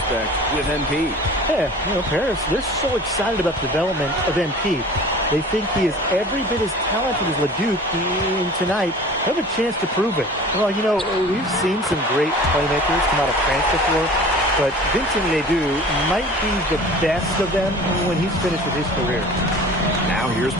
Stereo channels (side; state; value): both; normal; correlation 0.42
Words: with MP. Yeah, Paris, they're so excited about the development of MP. They think he is every bit as talented as Ledoux, and tonight they have a chance to prove it. Well, we've seen some great playmakers come out of France before, but Vincent Ledoux might be the best of them when he's finished with his career. Now here's